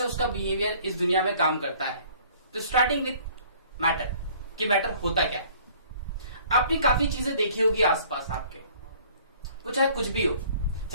उसका बिहेवियर इस दुनिया में काम करता है। तो स्टार्टिंग विथ मैटर कि मैटर होता क्या है। आपने काफी चीजें देखी होगी आसपास आपके, वो चाहे कुछ भी हो,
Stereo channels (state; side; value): inverted; both; correlation -0.54